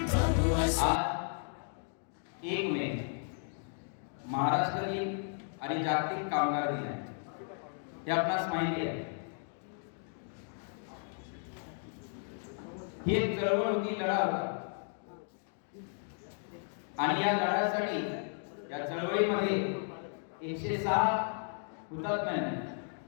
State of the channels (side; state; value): right; silent; 55 dB below the other